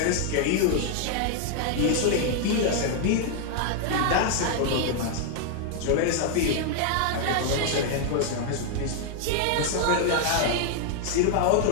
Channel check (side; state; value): both; different; correlation 0.00